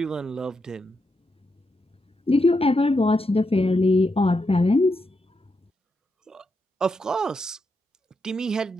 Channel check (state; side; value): normal; both; correlation 0.83